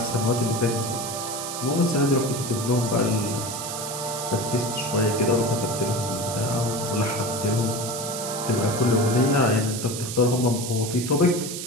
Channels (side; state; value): right; noise; hiss, 6 dB below the sound